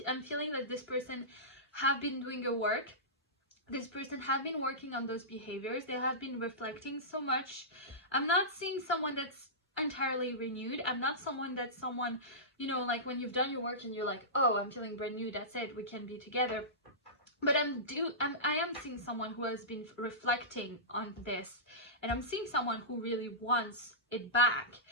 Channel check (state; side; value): normal; both; correlation -0.18